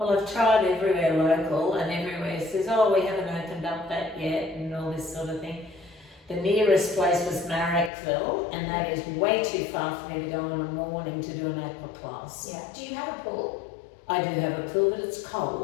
I've tried everywhere local and everywhere says, oh, we haven't opened up that yet and all this sort of thing. The nearest place was Marrickville, and that is way too far for me to go in the morning to do an aqua class. Yeah. Do you have a pool? I do have a pool, but it's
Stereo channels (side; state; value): right; drops out; at 7.9 s